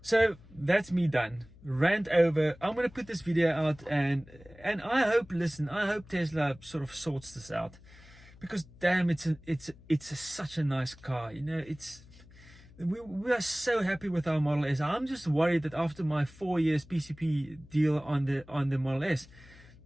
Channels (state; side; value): noise; left; hum, 23 dB below the sound